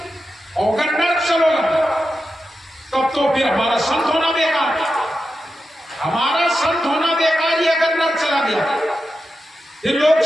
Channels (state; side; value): normal; both; correlation 0.90